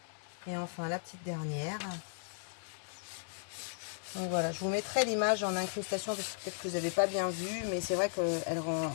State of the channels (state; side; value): silent; right; 54 dB below the other